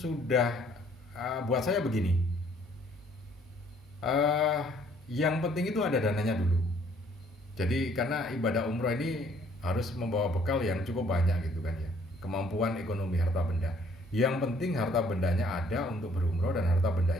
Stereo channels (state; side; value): normal; both; correlation 0.61